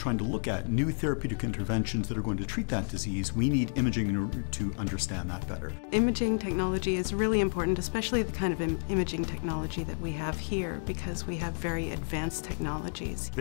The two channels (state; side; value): silent; right; digital silence